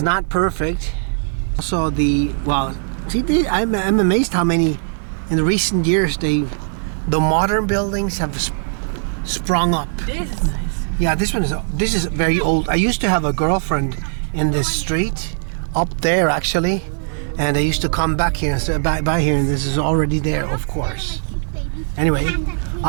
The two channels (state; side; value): silent; left; digital silence